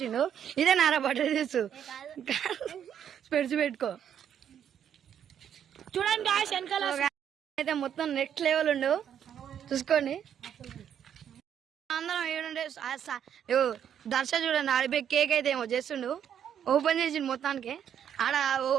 ఇదే నారా బర్త్డే డ్రెస్. స్పెడ్స్ పెట్టుకో చూడండి గాయ్స్ వెనకాల అయితే మొత్తం నెక్స్ట్ లెవెల్ ఉండు చూసుకోండి. అందరం ఏడుండే దర్శ చూడండి ఆడిపోయి కేక్ అయితే ఏమో చేస్తుండు. ఓపెన్ చేసిండు మొత్తానికి ఆడ. ఓ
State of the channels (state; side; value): quieter; left; 9.1 dB